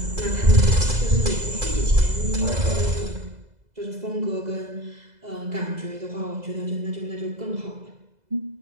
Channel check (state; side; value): late; left; 2.0 ms